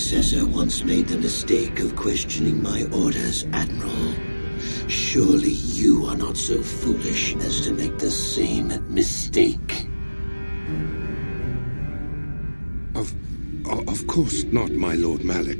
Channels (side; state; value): both; inverted; correlation -1.00